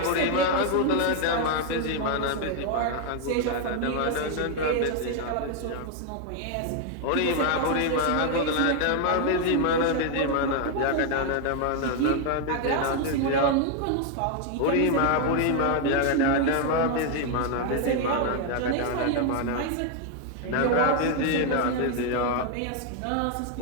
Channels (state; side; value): different; both; correlation 0.00